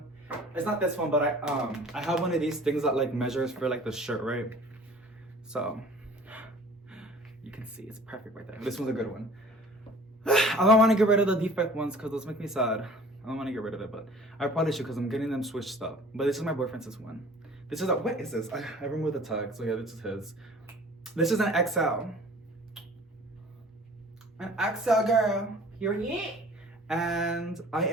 It's not this one, but I have one of these things that like measures for like the shirt, right? So you can see it's perfect right there. This one's a good one. I don't want to get rid of the defect ones because those make me sad. I don't want to get rid of it, but I probably should because I'm getting them switched up. But this is my boyfriend's one. This is a, what is this? I removed the tag, so yeah, this is his. This is an XL. An XL girl, period. And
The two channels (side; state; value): both; normal; correlation 0.47